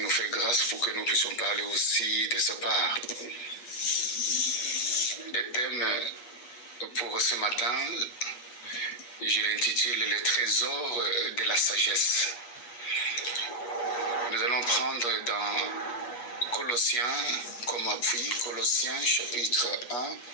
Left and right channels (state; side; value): late; right; 8.3 ms